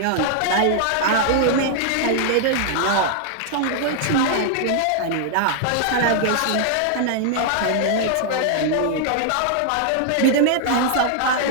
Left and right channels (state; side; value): different; both; correlation 0.00